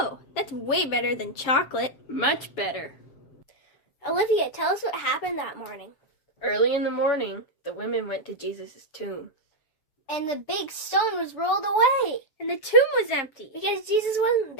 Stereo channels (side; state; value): right; late; 7.4 ms